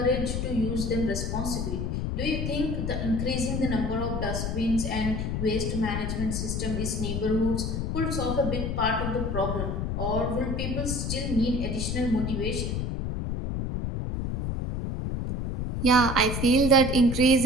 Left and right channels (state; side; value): noise; left; rumble, 1 dB below the sound